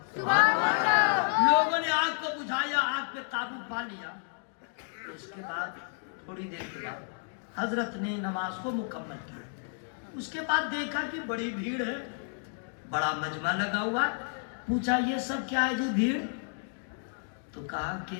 لوگوں نے آگ کو بجھایا, آگ پہ قابو پا لیا. اس کے بعد تھوڑی دیر کے بعد حضرت نے نماز کو مکمل کیا. اس کے بعد دیکھا کہ بڑی بھیڑ ہے, بڑا مجمع لگا ہوا. پوچھا یہ سب کیا ہے جی بھیڑ؟ تو کہا کہ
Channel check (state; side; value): silent; right; 57 dB below the other